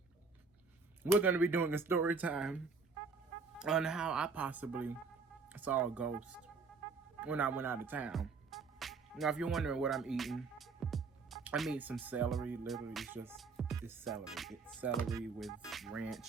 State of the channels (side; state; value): left; quieter; 4.6 dB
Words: We're gonna be doing a story time on how I possibly saw a ghost when I went out of town. Now if you're wondering what I'm eating, I'm eating some celery. Literally it's celery. It's celery with